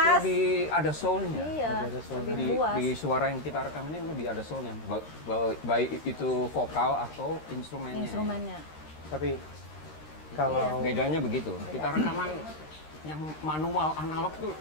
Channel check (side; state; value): right; late; 13 ms